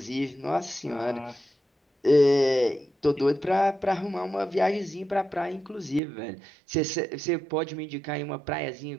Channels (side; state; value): left; drops out; at 6.0 s